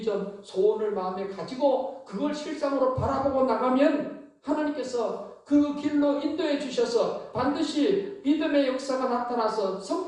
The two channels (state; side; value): identical; both; correlation 1.00